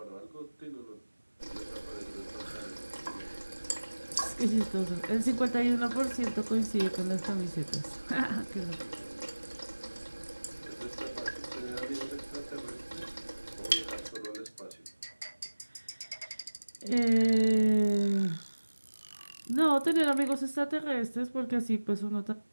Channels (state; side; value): inverted; both; correlation -1.00